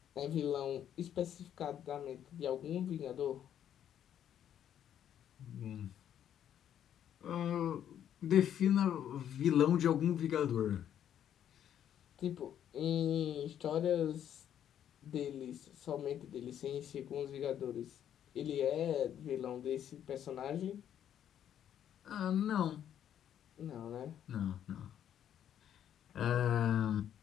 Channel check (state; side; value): quieter; right; 10.0 dB